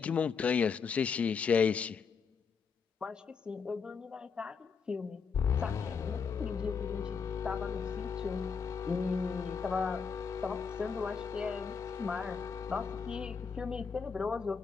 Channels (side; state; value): right; quieter; 5.9 dB